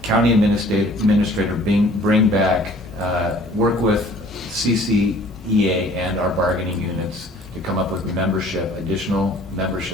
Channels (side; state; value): both; normal; correlation 0.53